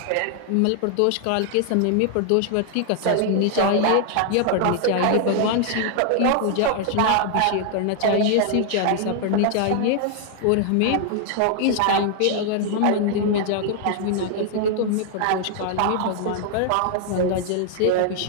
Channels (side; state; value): both; different; correlation 0.00